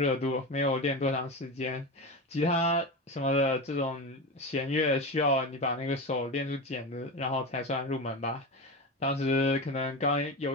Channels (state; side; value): normal; both; correlation 0.22